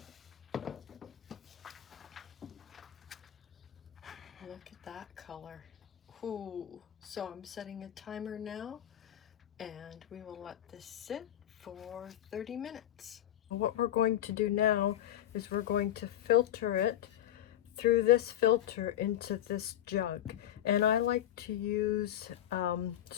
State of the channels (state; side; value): quieter; right; 11.8 dB